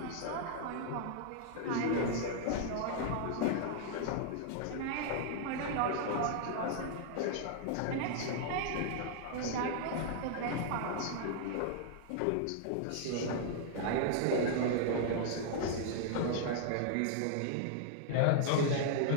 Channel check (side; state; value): both; different; correlation -0.01